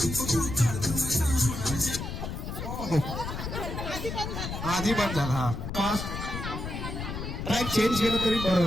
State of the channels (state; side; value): noise; left; rumble, 6 dB below the sound